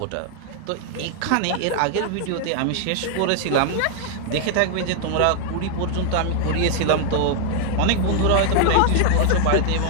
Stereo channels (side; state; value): both; different; correlation 0.00